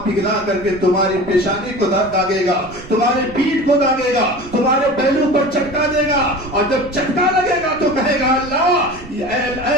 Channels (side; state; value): right; noise; rumble, 18 dB below the sound